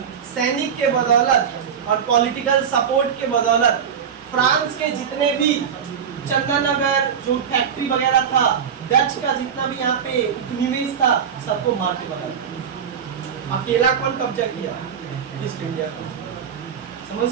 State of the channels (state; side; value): quieter; left; 7.6 dB